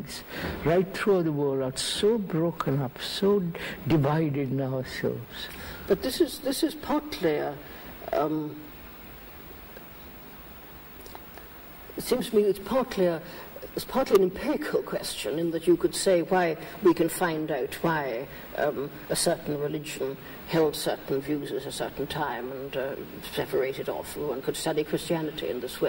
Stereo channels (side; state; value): both; identical; correlation 1.00